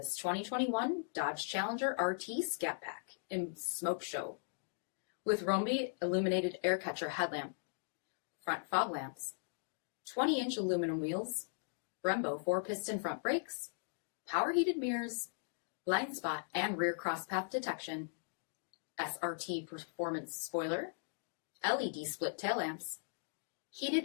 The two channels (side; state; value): right; silent; digital silence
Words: 2021 Dodge Challenger RT Scat Pack in Smoke Show with Rhomby illuminated air catcher headlamp, front fog lamps, 20-inch aluminum wheels, Brembo 4-piston front brakes, power heated mirrors, blind spot and rear crosspath detection, SRT performance spoiler, LED split tail lamps,